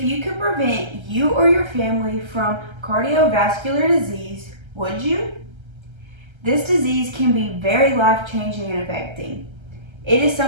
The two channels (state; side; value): late; left; 1.3 ms